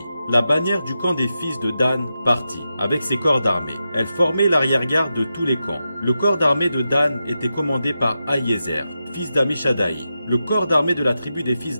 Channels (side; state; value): both; inverted; correlation -0.89